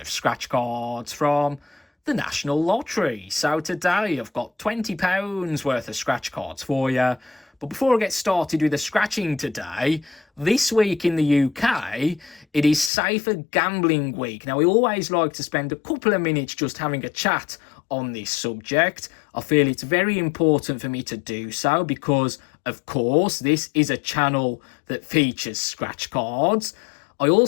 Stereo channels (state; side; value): drops out; right; at 12.9 s